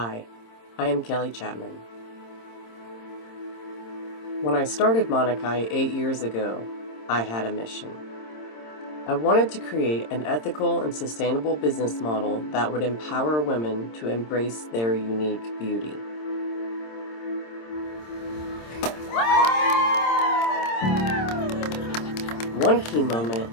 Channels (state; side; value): late; right; 26 ms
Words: I am Kelley Chapman. When I started Manakai 8 years ago, I had a mission. I wanted to create an ethical and sustainable business model that would empower women to embrace their unique beauty. One key moment